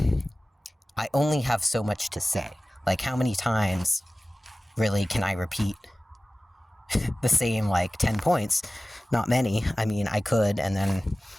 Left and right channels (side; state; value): both; normal; correlation 0.97